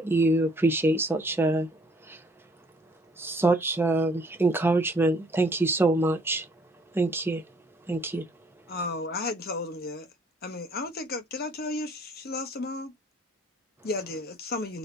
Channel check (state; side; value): normal; both; correlation 0.61